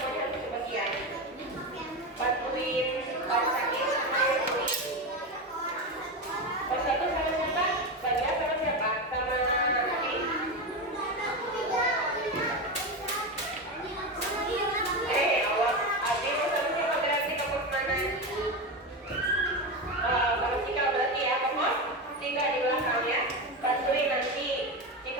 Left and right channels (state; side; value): normal; both; correlation 0.17